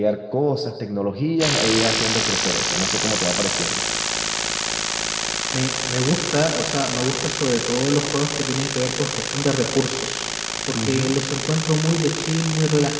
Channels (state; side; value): identical; both; correlation 1.00